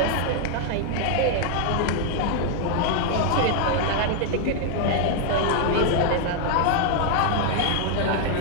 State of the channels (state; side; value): different; both; correlation 0.00